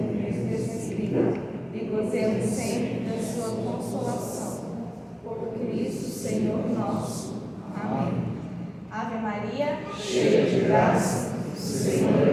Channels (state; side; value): identical; both; correlation 1.00